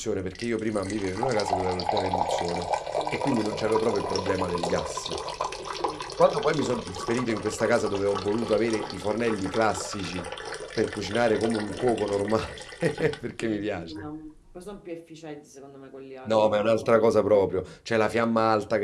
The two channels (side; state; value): both; identical; correlation 1.00